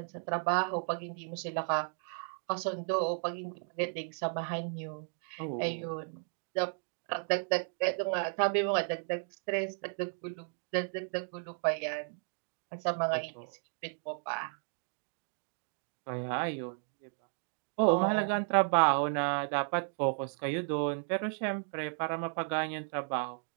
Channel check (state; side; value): silent; left; 55 dB below the other